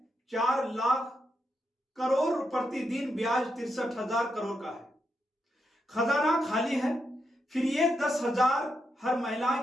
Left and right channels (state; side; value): normal; both; correlation 0.83